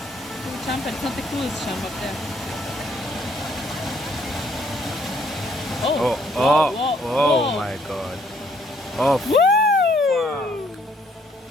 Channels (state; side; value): normal; both; correlation 0.66